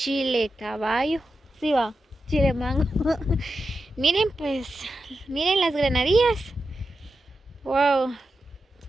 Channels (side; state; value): both; normal; correlation 0.89